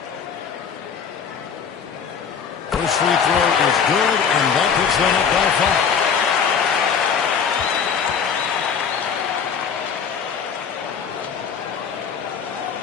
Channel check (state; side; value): quieter; right; 6.7 dB